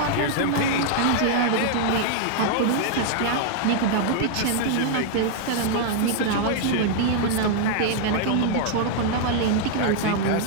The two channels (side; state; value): both; different; correlation -0.01